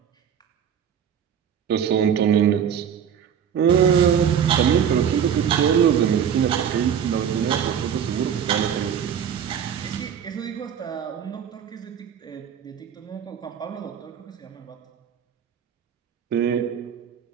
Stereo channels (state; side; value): quieter; left; 8.3 dB